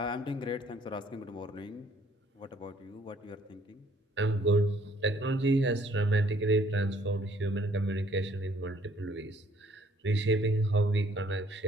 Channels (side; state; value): both; normal; correlation 0.62